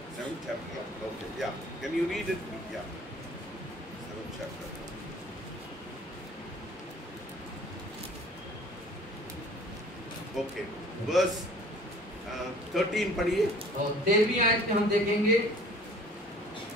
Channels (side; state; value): both; normal; correlation 0.50